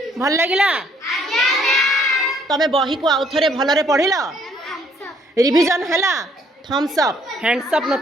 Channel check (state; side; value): normal; both; correlation 0.65